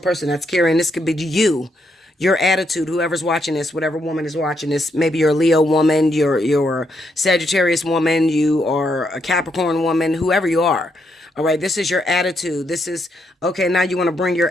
that's carrying. This could be you, your attitude, whoever's watching this, whatever woman is watching this. Maybe you're a Leo woman, you're a Sagittarius woman, you are a Capricorn woman, whoever you are. All right, this is your attitude. This is, okay, now you want to bring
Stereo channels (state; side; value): normal; both; correlation 0.78